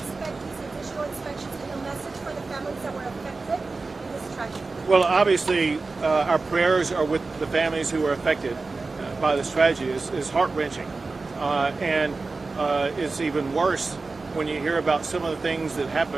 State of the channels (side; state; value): left; quieter; 3.8 dB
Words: these additional inspections and a message for the families that were affected in this tragedy? Well, obviously, our prayers are with the families who were affected by this tragedy. It's heart-wrenching. And it's even worse when you hear about some of the things that